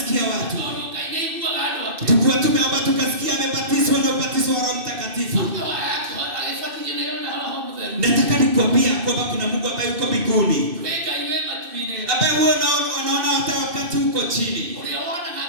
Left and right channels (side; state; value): left; late; 2.6 ms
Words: watu. Tukua tumeomba tukasikia amebatizwa na ubatizo wa Roho Mtakatifu. Nataka nikwambia kwamba kuna Mungu ambaye yuko mbinguni, ambaye huwa anaona hata wakati uko chini,